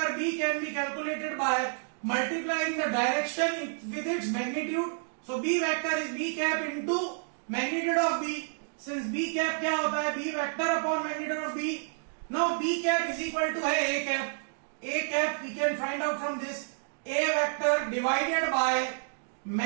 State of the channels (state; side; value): silent; left; digital silence